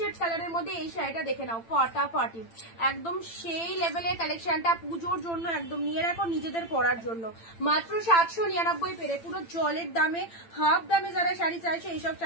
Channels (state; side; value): late; right; 8.9 ms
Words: কালারের মধ্যে এই শাড়িটা দেখে নাও, ফাটাফাটি, একদম সেই লেভেলের কালেকশনটা, পুজোর জন্য একদম নিয়ে রাখো, নিজেদের পরার জন্য। মাত্র 799 পেরে, পুরো জলের দামে, হাফ দামে যারা শাড়ি চাইছে এইসব